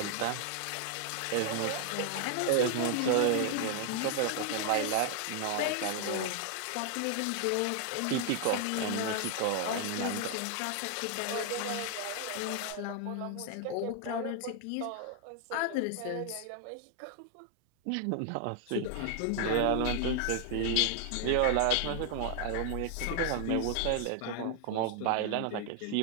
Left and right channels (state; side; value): different; both; correlation 0.00